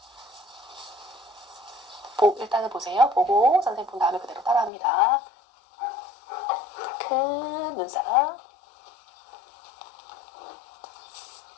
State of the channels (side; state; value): right; drops out; at 4.7 s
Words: 일단은 보세요. 보고 선생님 본 다음에 그대로 따라합니다. 자, 큰 눈사람.